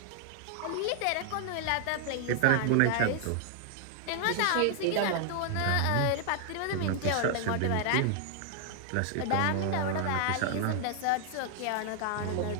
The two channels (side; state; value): both; different; correlation 0.00